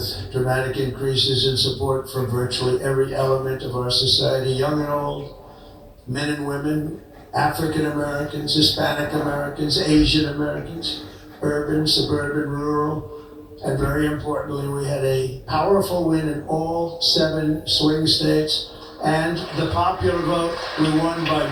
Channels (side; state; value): both; identical; correlation 1.00